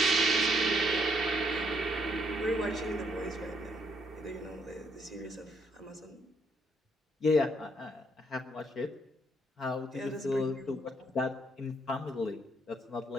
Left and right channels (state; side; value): normal; both; correlation 0.72